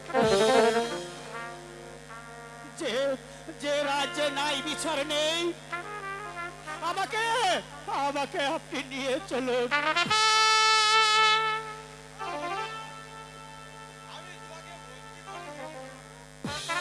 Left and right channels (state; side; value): identical; both; correlation 1.00